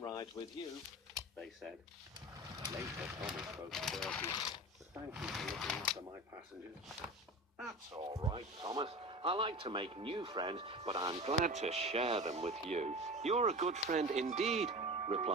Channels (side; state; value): both; normal; correlation 0.32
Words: rides with you," they said. Later, Thomas spoke to Bertie. "Thank you for looking after my passengers." "That's all right, Thomas. I like to make new friends, but I'm glad to share them with you." "You're a good friend indeed,"